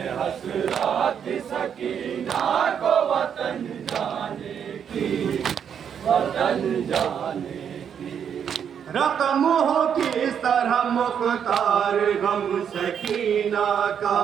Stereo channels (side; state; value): left; quieter; 8.0 dB